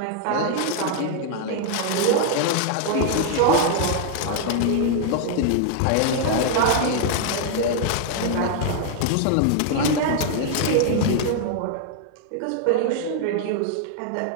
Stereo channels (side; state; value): both; different; correlation 0.00